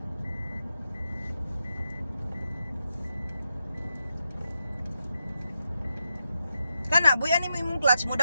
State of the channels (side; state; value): both; inverted; correlation -0.87